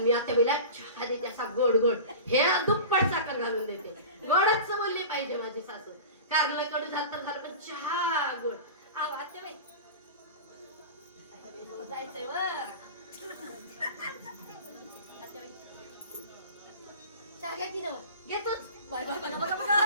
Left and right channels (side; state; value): both; inverted; correlation -0.34